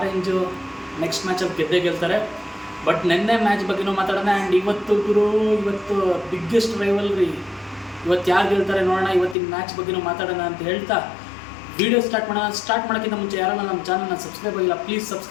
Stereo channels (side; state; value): right; drops out; at 9.3 s